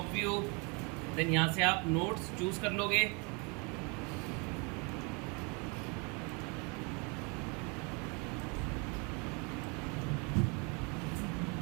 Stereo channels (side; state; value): left; quieter; 32.0 dB